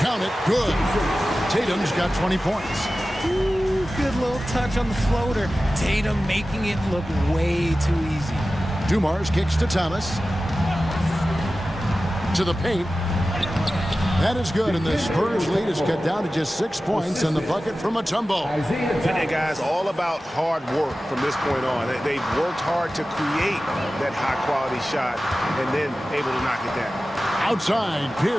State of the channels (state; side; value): normal; both; correlation 0.95